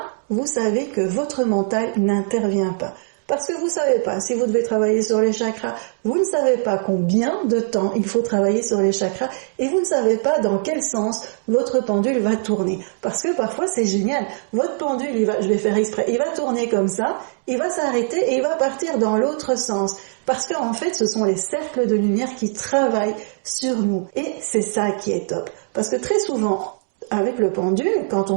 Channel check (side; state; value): left; silent; 63 dB below the other